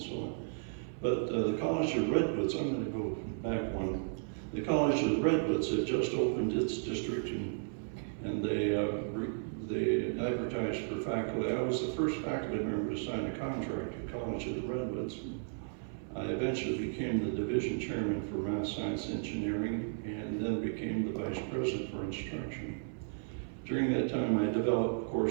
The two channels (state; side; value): silent; left; 55 dB below the other